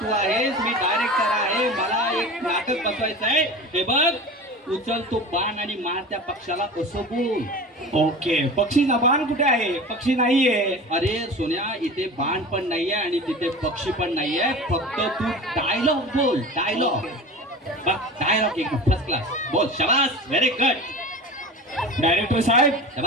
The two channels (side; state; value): both; normal; correlation 0.34